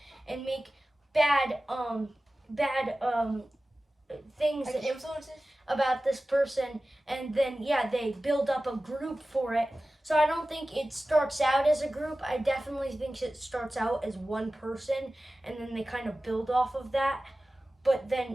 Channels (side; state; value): both; normal; correlation 0.96